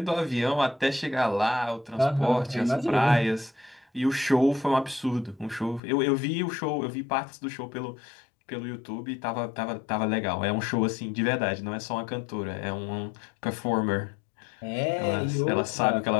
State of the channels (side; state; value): right; drops out; at 5.8 s